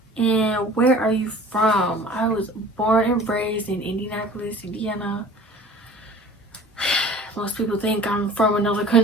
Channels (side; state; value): both; normal; correlation 0.45